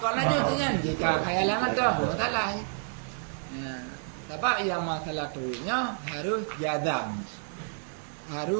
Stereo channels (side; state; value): left; silent; 58 dB below the other